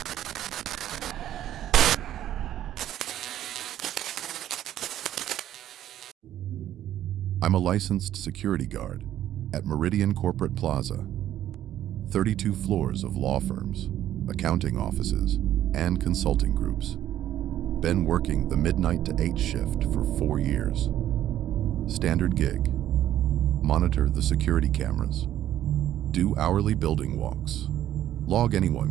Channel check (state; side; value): quieter; left; 12.1 dB